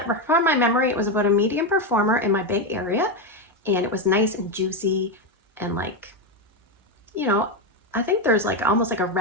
from my memory, it was about a medium performer in my Bay Area, and it was nice and juicy and like, you know, I think there's like almost like a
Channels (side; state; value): both; normal; correlation 0.09